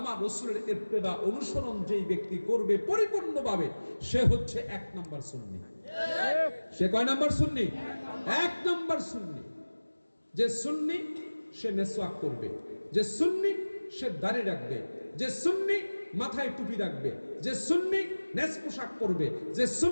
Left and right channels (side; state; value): both; inverted; correlation -1.00